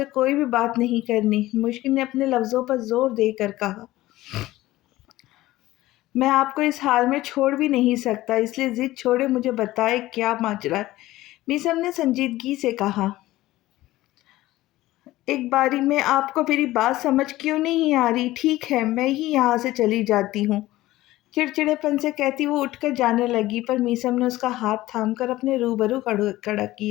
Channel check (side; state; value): right; quieter; 16.8 dB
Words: कोई भी बात नहीं करनी, मुश्किल ने अपने लफ्ज़ों पर जोर देकर कहा। मैं आपको इस हाल में छोड़ भी नहीं सकता, इसलिए जिद छोड़े मुझे बताएं क्या माजरा है। मीसम ने संजीदगी से कहा। एक बारी में आपको मेरी बात समझ क्यों नहीं आ रही? ठीक है, मैं ही यहाँ से चली जाती हूँ, चिड़चिड़ेपन से कहती वो उठकर जाने लगी, पर मीसम ने उसका हाथ थामकर अपने रूबरू खड़ा